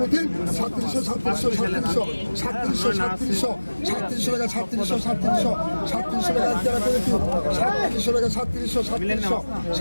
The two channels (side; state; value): both; inverted; correlation -1.00